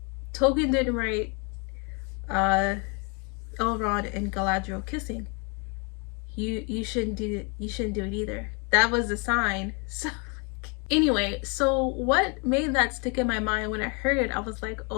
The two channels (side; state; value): right; quieter; 34.0 dB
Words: Tolkien didn't write Elrond and Galadriel kissing. You shouldn't do it. You shouldn't do it either. That was a sign. So anyway, so what made that stick in my mind when I heard it? I was like,